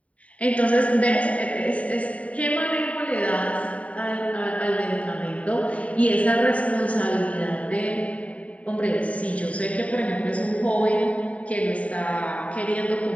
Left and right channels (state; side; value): late; right; 0.067 ms